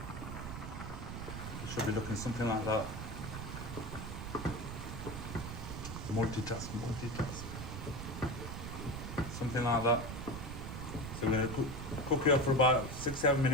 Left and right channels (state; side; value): noise; right; rumble, 7 dB below the sound